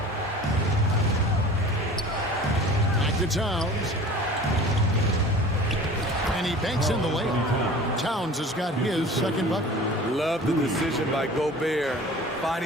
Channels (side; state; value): both; normal; correlation 0.42